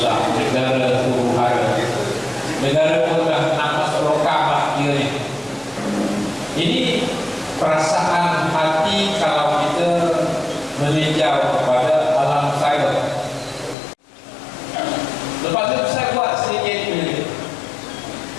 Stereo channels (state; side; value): drops out; right; at 13.8 s